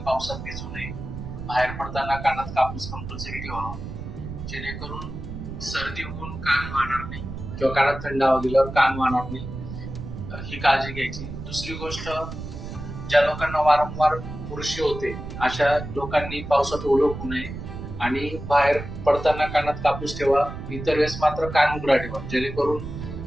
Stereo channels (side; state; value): right; noise; rumble, 9 dB below the sound